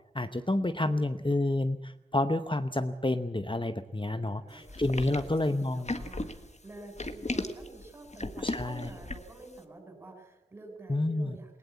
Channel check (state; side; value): normal; both; correlation 0.84